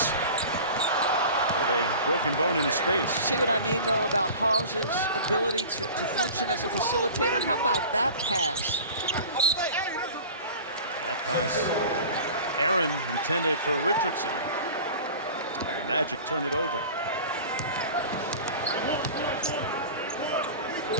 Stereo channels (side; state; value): both; inverted; correlation -0.39